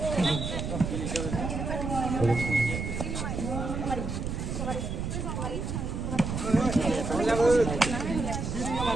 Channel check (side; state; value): right; noise; rumble, 3 dB below the sound